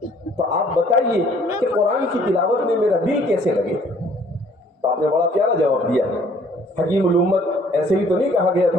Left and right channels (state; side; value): normal; both; correlation 0.58